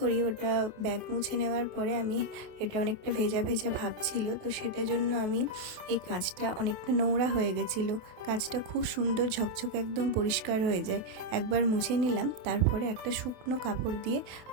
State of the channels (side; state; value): left; late; 28 ms